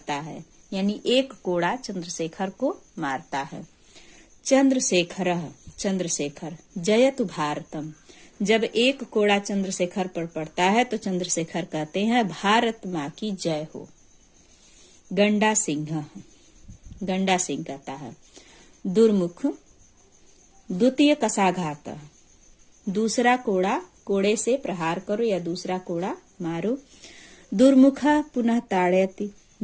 है, यानी एक कोड़ा चंद्रशेखर को मारता है। चंद्रशेखर, चंद्रशेखर जयतु भारतम, जब एक कोड़ा चंद्रशेखर पर पड़ता है तो चंद्रशेखर कहते हैं भारत माँ की जय हो। गंडा सिंह, गंडा सिंह कहता है दुर्मुख द्वितीय कसाघात, दूसरा कोड़ा, कोड़े से प्रहार करो या दूसरा कोड़ा मारो। दुर्मुख पुनः ताड़यति,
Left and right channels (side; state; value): both; identical; correlation 1.00